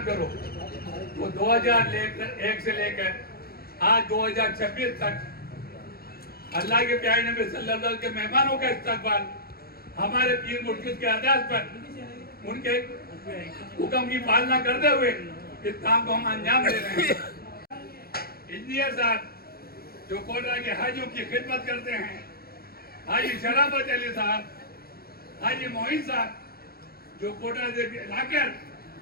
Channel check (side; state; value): right; late; 0.44 ms